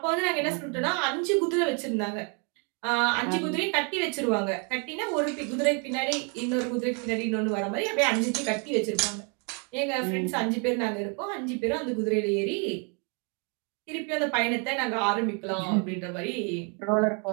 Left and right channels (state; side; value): quieter; left; 36.7 dB